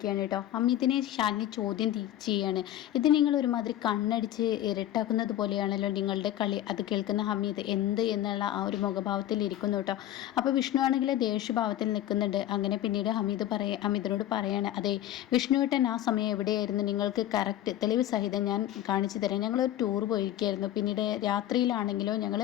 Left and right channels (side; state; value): right; quieter; 12.8 dB